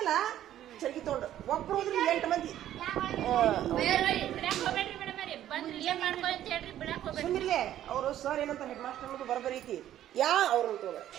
ಚರ್ಗಿ ತೊಗೊಂಡು ಒಬ್ರು ಹೋದ್ರಿ 8 ಮಂದಿ ಬಿಡಾಕ್ ಹೋಗ್ಬೇಡ್ರಿ ಮೇಡಮ್ ರೀ ಬಂದ್ರಿ ಇಲ್ಲೇ ಮಾಡ್ಕೊ ಅಂತ ಹೇಳ್ರಿ ಬಿಡಾಕ್ ಹೋಗ್ಬೇಡ್ರಿ ಸುಮ್ಮಿರ್ಲೆ ಅವರು ಸರ್ ಏನಂತ ಹೆಡ್ ಮಾಸ್ಟರ್ ಅನ್ನೋದು ಬರಬರಿ ಐತಿ ಅವ್ರು ಅಂತ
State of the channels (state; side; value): quieter; left; 12.1 dB